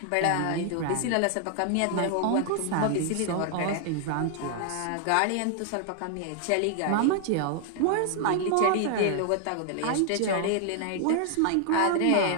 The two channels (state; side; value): different; both; correlation 0.00